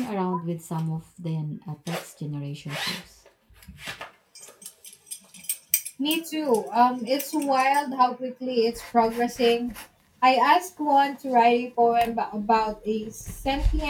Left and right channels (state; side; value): identical; both; correlation 1.00